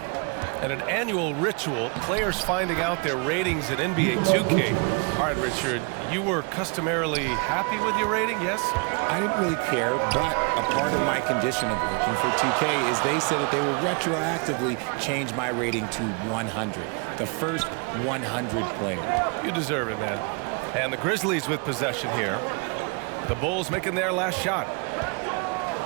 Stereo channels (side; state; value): left; quieter; 33.7 dB